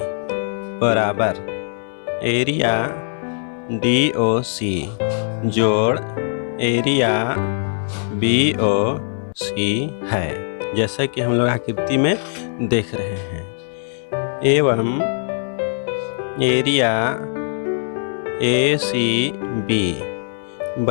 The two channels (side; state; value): right; silent; digital silence